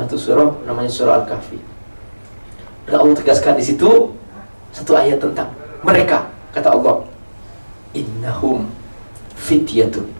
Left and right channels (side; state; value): both; inverted; correlation -1.00